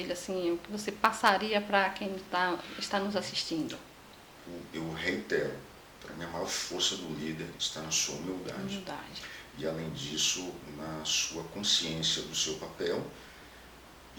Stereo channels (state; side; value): identical; both; correlation 1.00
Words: assim, o que você passaria para quem está nos assistindo? Eu reitero, para mim a maior força do líder está na sua humildade. E além disso, na sua consciência do seu papel